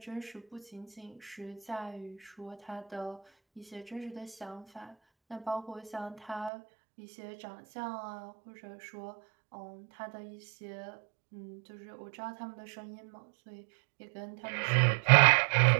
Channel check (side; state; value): left; drops out; at 6.5 s